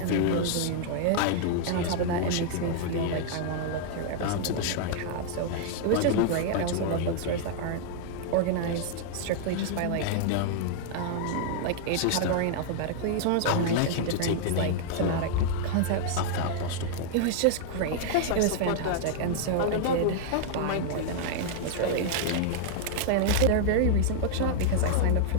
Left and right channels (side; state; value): both; different; correlation -0.01